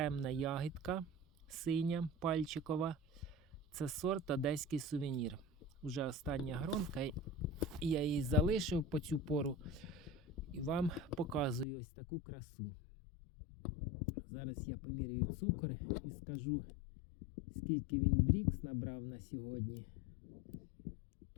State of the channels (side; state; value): right; drops out; at 11.7 s